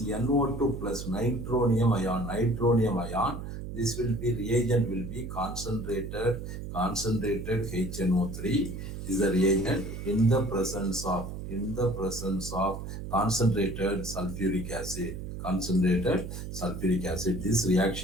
NO2 plus nitronium ion. Nitronium ion, this will be reagent will be concentrated HNO3 is the reagent in the presence of concentrated sulfuric acid. Concentrated sulfuric acid. This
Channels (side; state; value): right; noise; hum, 8 dB below the sound